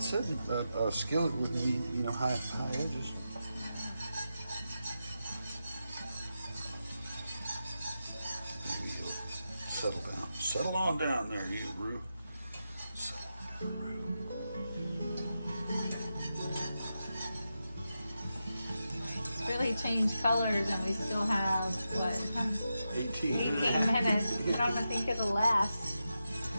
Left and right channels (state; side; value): inverted; both; correlation -0.89